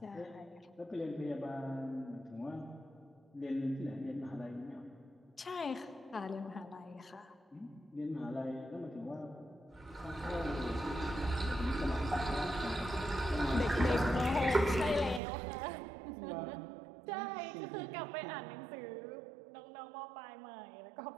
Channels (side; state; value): left; drops out; at 15.2 s